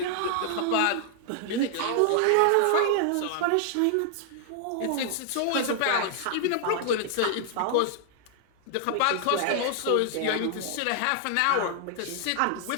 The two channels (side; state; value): both; different; correlation 0.00